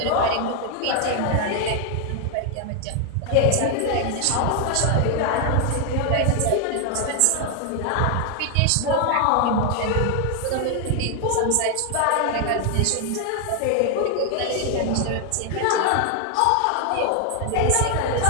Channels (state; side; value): different; both; correlation 0.00